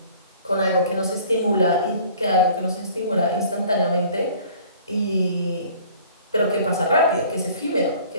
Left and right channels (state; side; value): inverted; both; correlation -0.51